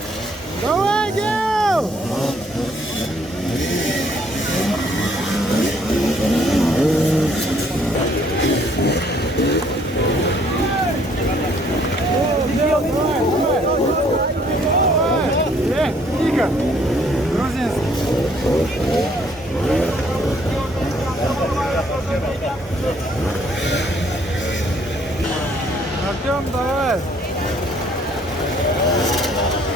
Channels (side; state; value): both; normal; correlation 0.64